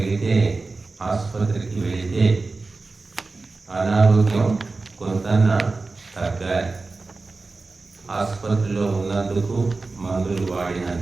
ఆసుపత్రికి వెళితే అనారోగ్యం కొంత తగ్గాలి. ఆసుపత్రిలో ఉన్నందుకు, మందులు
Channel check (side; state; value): left; quieter; 3.7 dB